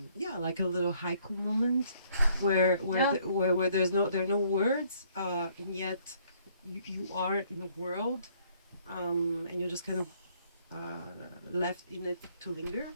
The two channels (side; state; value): both; inverted; correlation -0.64